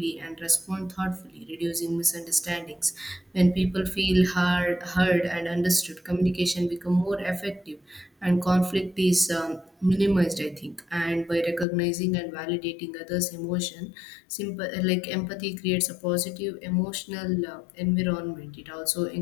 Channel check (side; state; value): right; drops out; at 11.7 s